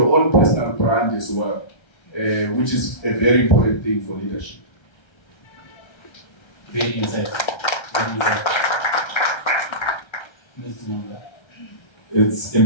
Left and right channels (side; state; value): right; late; 1.3 ms